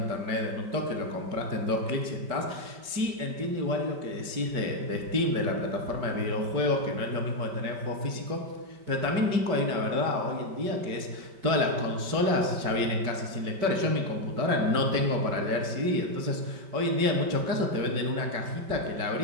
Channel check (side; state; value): left; late; 5.2 ms